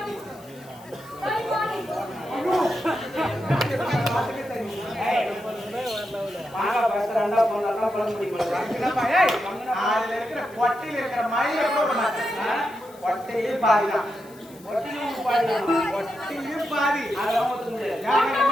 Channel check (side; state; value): left; noise; hiss, 25 dB below the sound